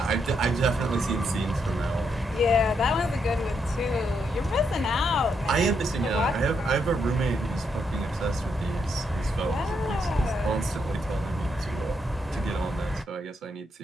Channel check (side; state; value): both; normal; correlation 0.78